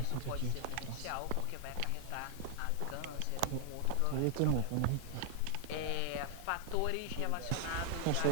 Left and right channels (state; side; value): different; both; correlation 0.00